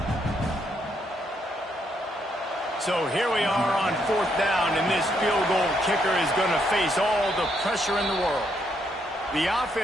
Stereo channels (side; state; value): both; normal; correlation 0.75